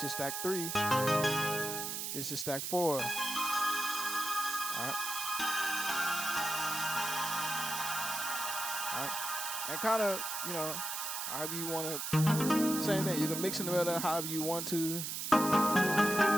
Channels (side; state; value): right; noise; hiss, 3 dB below the sound